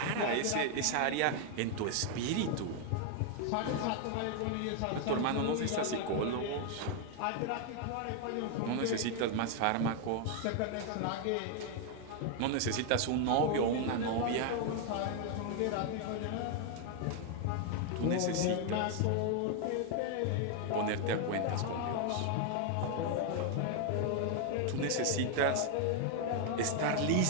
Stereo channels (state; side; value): different; both; correlation 0.00